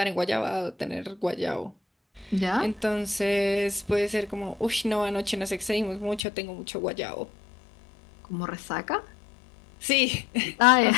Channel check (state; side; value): drops out; right; at 6.2 s